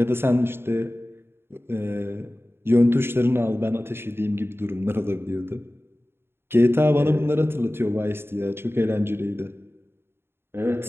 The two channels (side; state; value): left; late; 0.11 ms